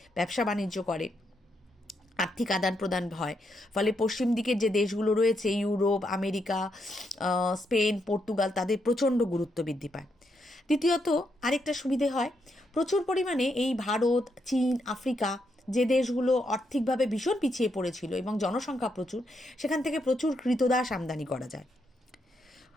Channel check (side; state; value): both; normal; correlation 0.79